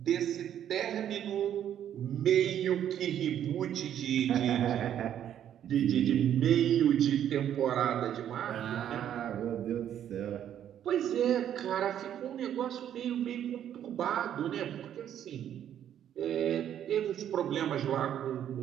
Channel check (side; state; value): left; quieter; 10.2 dB